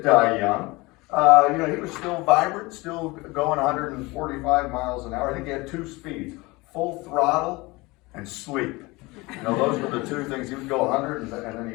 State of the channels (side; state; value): right; quieter; 23.1 dB